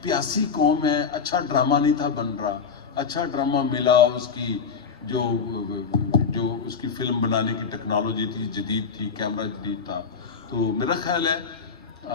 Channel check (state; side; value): quieter; right; 5.7 dB